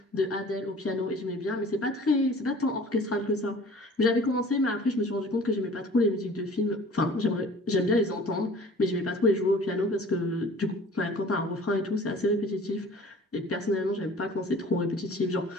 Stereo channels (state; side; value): normal; both; correlation 0.47